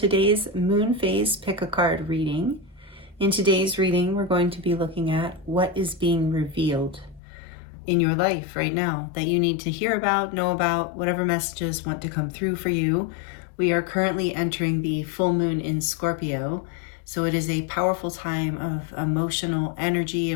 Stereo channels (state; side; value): drops out; right; at 7.2 s